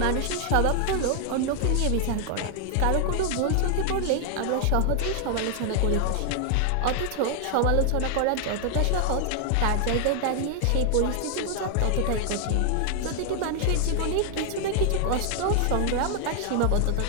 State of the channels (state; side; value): different; both; correlation 0.00